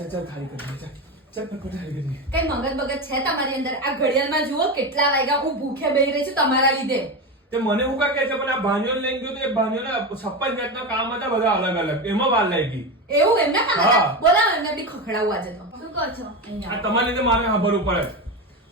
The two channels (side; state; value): both; normal; correlation 0.18